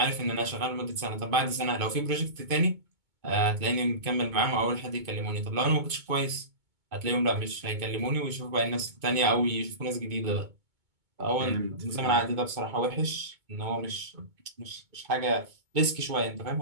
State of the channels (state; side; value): late; left; 2.2 ms